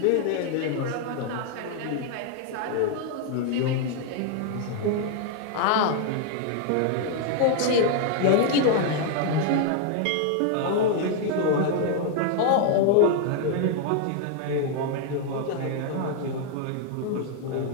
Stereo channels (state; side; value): different; both; correlation 0.00